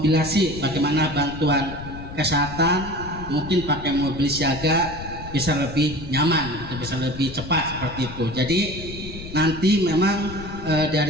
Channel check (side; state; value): left; noise; rumble, 11 dB below the sound